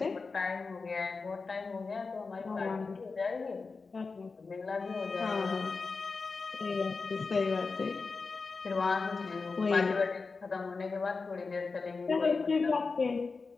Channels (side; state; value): right; quieter; 4.4 dB